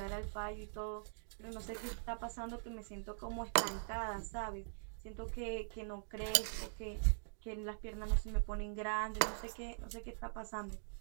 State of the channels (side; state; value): left; silent; digital silence